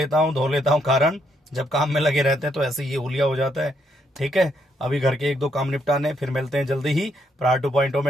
हूँ, धो लेता हूँ, कारण जब काम में लगे रहते हैं तो ऐसे ये हुलिया हो जाता है। ठीक है, अभी घर के 1-2 काम निपटाने, फिर मिलते हैं जल्दी ही। प्रहार 2.0 में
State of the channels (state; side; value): normal; both; correlation 0.75